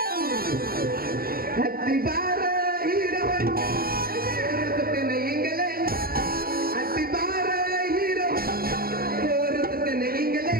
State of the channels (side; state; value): left; late; 0.43 ms